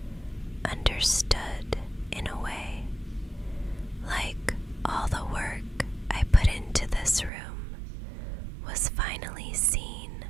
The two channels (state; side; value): drops out; left; at 7.3 s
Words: understood in a way, like all the work I put into this room was finally seen